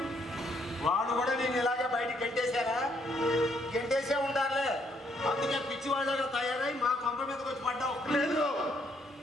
వాడు కూడా నేను ఇలాగే బయటికి గెంటేసే ఉండాలే. అందుకే పిచ్చివాళ్ళగా తయారై మా కొంప మీదకి వచ్చి పడ్డావు. లేదు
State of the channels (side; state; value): both; normal; correlation 0.71